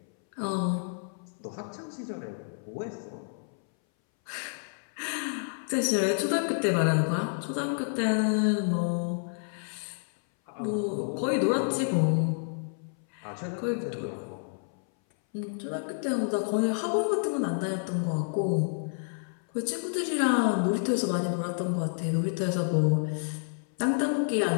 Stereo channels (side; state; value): right; silent; 58 dB below the other